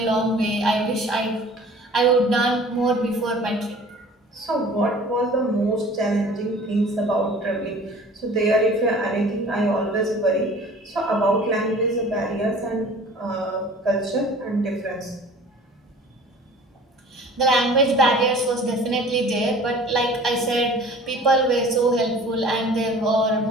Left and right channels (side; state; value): both; normal; correlation 0.46